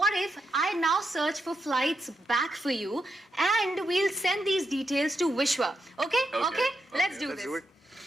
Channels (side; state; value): both; normal; correlation 0.84